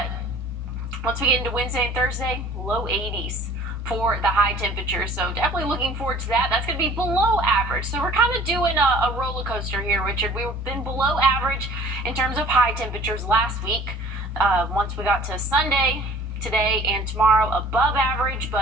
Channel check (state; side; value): normal; both; correlation 0.49